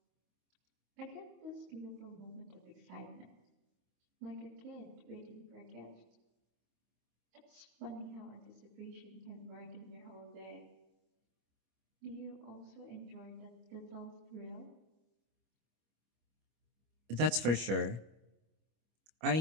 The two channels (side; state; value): left; late; 25 ms